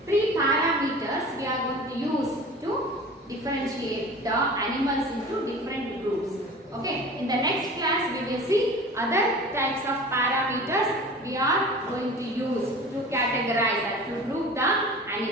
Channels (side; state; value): both; normal; correlation 0.39